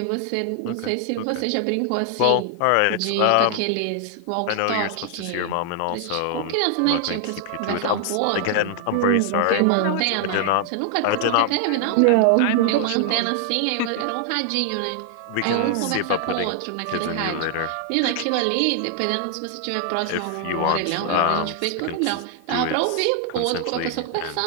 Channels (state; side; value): different; both; correlation 0.00